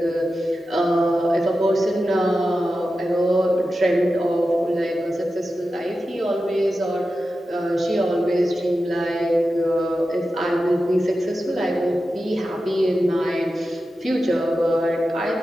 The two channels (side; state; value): both; normal; correlation 0.92